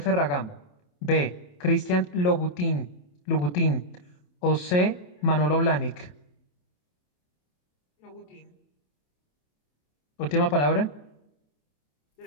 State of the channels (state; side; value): late; right; 28 ms